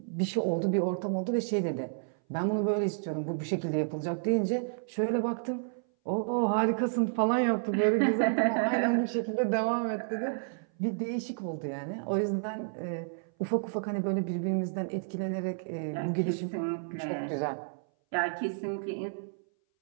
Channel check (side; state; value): left; silent; 57 dB below the other